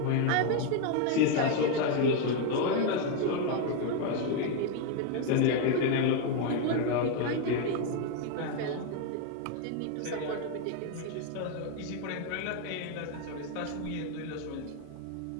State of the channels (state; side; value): different; both; correlation 0.01